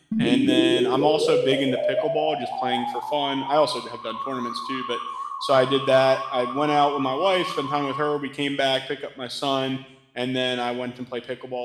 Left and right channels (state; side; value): identical; both; correlation 1.00